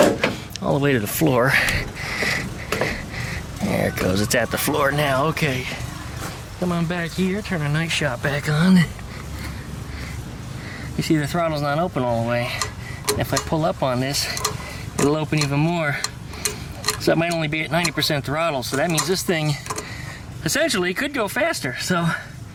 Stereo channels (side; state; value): both; identical; correlation 1.00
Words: all the way to the floor. There it goes, it's at the floor now. Okay, come on back here, turn our night shot back on. You see the throttle's not open all the way. If I pull up on this, it'll open even more. So it might only be at 90% throttle, so that means this thing essentially could go faster. So